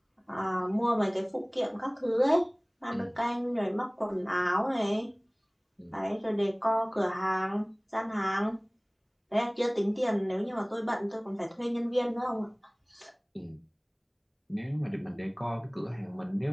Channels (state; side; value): identical; both; correlation 1.00